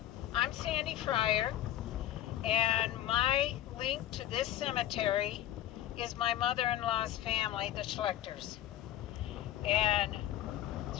I'm Sandy Fryer, and my link to this cemetery is my mother-in-law's family, the Schlechters. And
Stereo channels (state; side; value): quieter; right; 12.8 dB